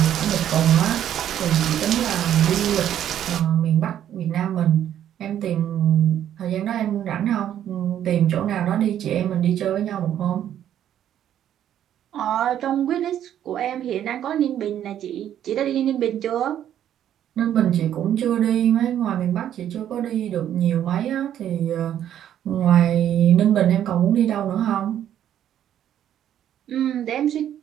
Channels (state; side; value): quieter; left; 10.7 dB